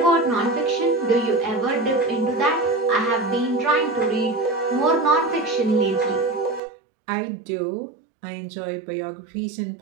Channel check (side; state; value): left; drops out; at 6.6 s